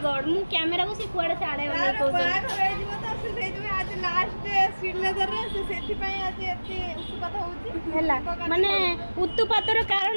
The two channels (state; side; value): inverted; both; correlation -1.00